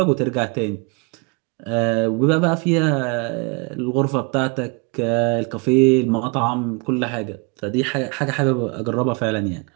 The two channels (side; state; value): left; quieter; 32.2 dB